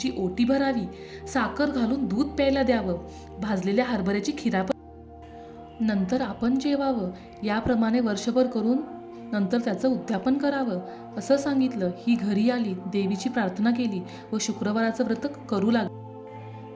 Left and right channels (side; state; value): both; identical; correlation 1.00